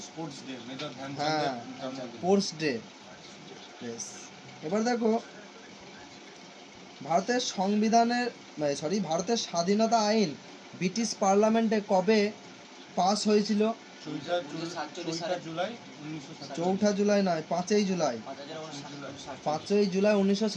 Sports day, major Dhyanchand. হ্যাঁ, স্পোর্টস ডে। বেশ, এবার দেখো ভারতের সংবিধানের ভারতের স্বাধীনতা আইন ব্রিটিশ পার্লামেন্টে কবে পাস হয়েছিল? 4 জুলাই নয়, 5ই জুলাই। 5ই জুলাই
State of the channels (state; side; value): identical; both; correlation 1.00